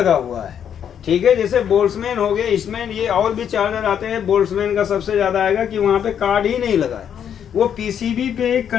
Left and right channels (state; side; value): quieter; right; 8.7 dB